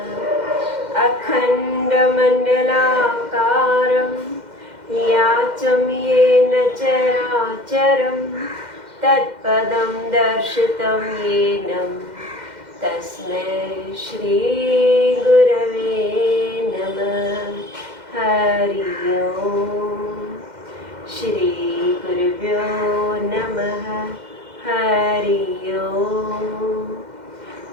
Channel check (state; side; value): late; left; 2.1 ms